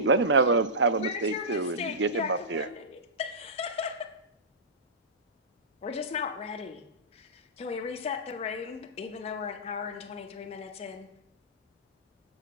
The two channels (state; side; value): normal; both; correlation -0.19